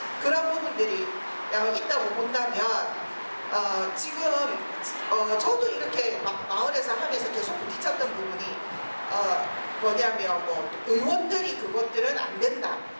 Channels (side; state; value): both; inverted; correlation -1.00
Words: 그런 부분들이 있다고 본다면 지금 저도 이렇게 막 마을에서 하면서 계속 부딪혔던 부분이 뭐냐면 뭐 의원들이 그것들은 안 된다